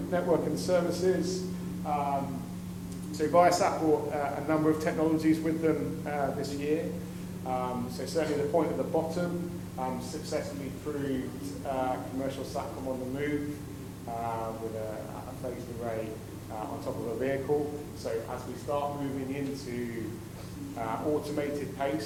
Network and Services. So Viasat brought a number of technologies with them this year. So certainly the point at the bottom successfully proved commercial SATCOM on the move with a phased array on top of a vehicle. So as we start moving into automated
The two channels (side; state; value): both; identical; correlation 1.00